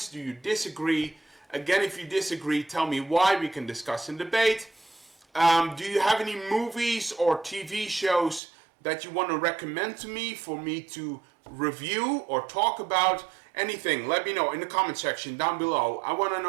Do you disagree? Again, if you disagree, tell me why. We can discuss and debate. Do you have any movies or TV shows that you want to recommend to me for me to review or talk about? Anything, let me know in the comment section down below. I want to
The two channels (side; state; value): left; drops out; at 8.4 s